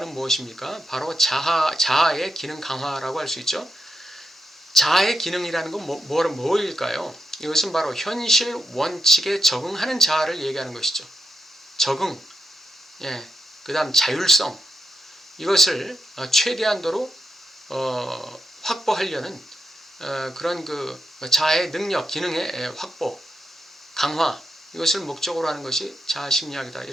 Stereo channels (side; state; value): both; normal; correlation 0.84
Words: 무엇입니까? 바로 자아의 기능 강화라고 할 수 있죠. 자아의 기능이라는 건 뭐일까요? 이것은 바로 현실 원칙에 적응하는 자아를 얘기하는 것이죠. 적응, 그 다음 자율성, 이것을 최대한도로 확보하려는 그런 그 자아의 능력, 기능의 확보, 강화, 이것을 목적으로 하는 것이 자아심리학이다.